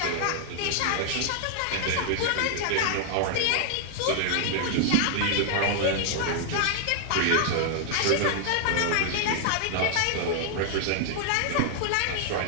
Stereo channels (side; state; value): both; different; correlation 0.00